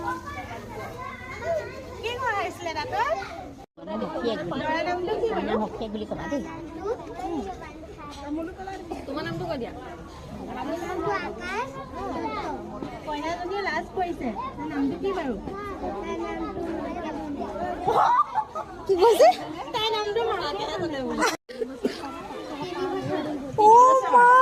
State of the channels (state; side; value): identical; both; correlation 1.00